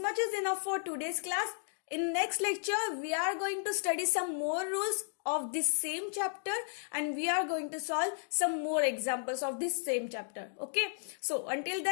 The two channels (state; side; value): silent; right; digital silence